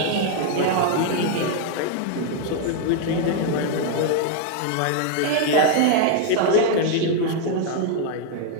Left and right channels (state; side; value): different; both; correlation 0.00